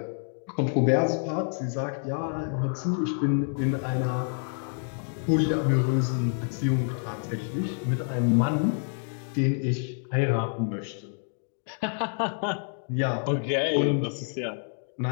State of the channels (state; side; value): silent; right; 60 dB below the other